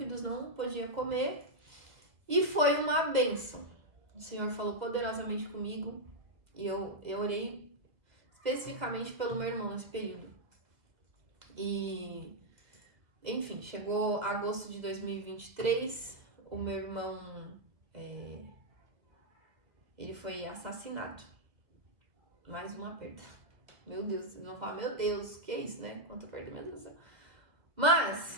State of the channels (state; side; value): late; left; 2.0 ms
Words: não podia comer, e foi uma bênção. O Senhor falou poderosamente comigo, e eu orei especificamente pelo meu irmão nesse período. E, Enfim, chegou agosto de 2023, o meu irmão, ele foi assassinado. Mais uma perda. Meu Deus, vocês vão falar, meu Deus, que é isso, né? Quanta perda, meu Deus do céu.